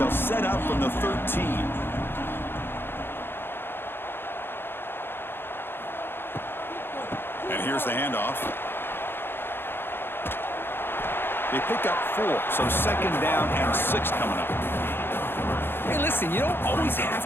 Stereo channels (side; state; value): right; late; 0.10 ms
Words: set up from the 13. And here's the handoff. They pick up 4, so second down and 6 coming up. Hey, listen, you don't always